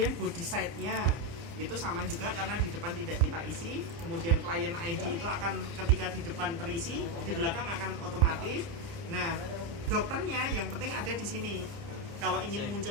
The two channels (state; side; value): late; left; 29 ms